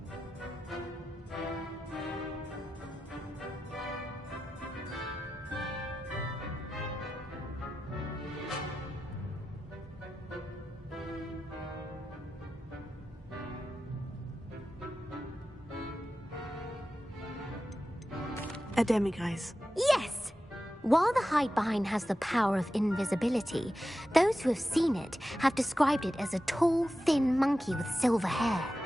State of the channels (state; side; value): normal; both; correlation 0.92